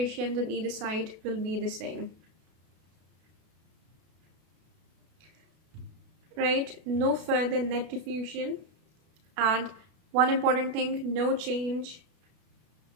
on either side will be the same. Right? No further net diffusion, and one important thing, no change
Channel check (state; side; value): late; left; 33 ms